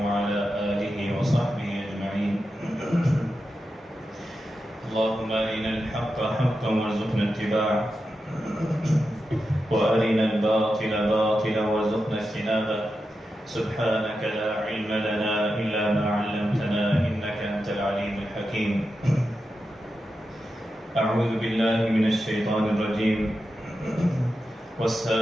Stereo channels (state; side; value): normal; both; correlation 0.89